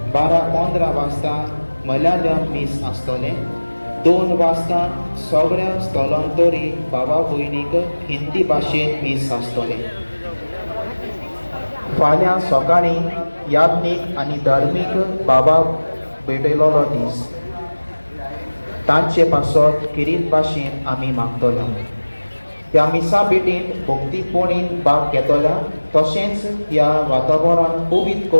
12:15 वाजता मल्याळम मीस आसतलें. 2 वाजता सगळ्या स्थलांतरी भावा भयणीक हिंदी भाशेन मीस आसतलें. फाल्यां सकाळीं याज्ञीक आनी धार्मीक भावाक भेटयलो दीस. तांचे पासत किरीत भाशेन आमी मागतले. ह्या मिसा भेटींत भक्तीपोणीन भाग घेतल्या तशेंच ह्या वातावरण पवित्र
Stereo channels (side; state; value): both; inverted; correlation -1.00